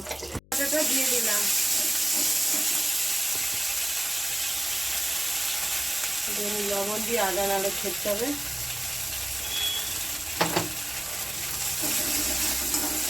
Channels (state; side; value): noise; left; hum, 26 dB below the sound